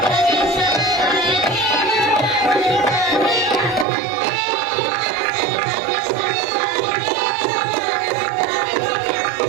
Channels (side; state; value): left; drops out; at 3.9 s